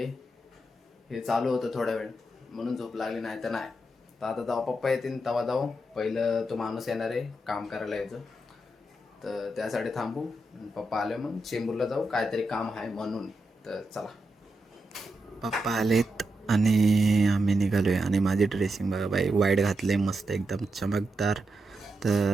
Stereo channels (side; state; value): both; normal; correlation 0.85